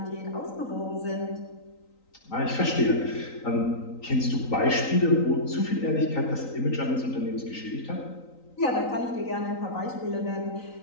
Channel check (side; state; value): right; late; 3.9 ms